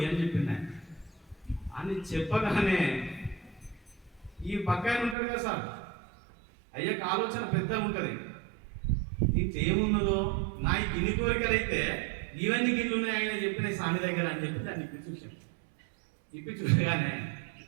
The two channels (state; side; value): drops out; left; at 5.2 s